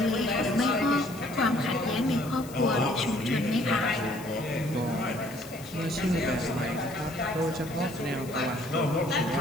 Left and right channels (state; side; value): noise; left; hiss, 18 dB below the sound